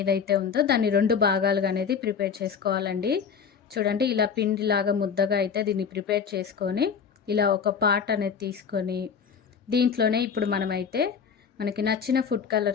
ఉందో దాన్ని 2 భాగాలుగా అనేది ప్రిపేర్ చేసుకోవాలండి. చూడండి, ఇలా పిండిలాగా ముద్దగా అయితే దీన్ని ప్రిపేర్ చేసుకొని ఇలా ఒక పార్ట్ అనేది తీసుకొని దీంట్లోనే ఇప్పుడు మనమైతే మనకి నచ్చిన ఫుడ్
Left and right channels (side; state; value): right; quieter; 6.6 dB